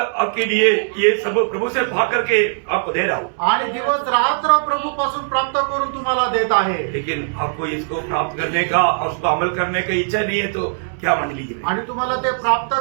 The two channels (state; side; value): silent; left; 66 dB below the other